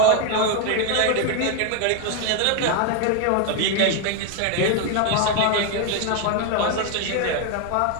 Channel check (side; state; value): both; different; correlation 0.01